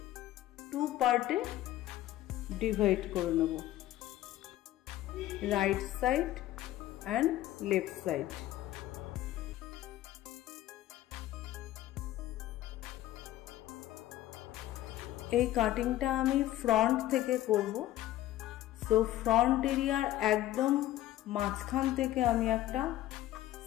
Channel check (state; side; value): quieter; right; 14.5 dB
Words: टू पार्टे डिवाइड करे नेब, right side and left side. এই কাটিংটা আমি ফ্রন্ট থেকে করব। সো ফ্রন্ট এরিয়ার একদম মাঝখান থেকে আমি একটা